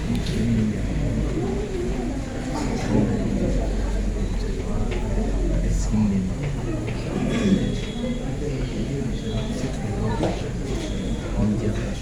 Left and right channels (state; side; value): identical; both; correlation 1.00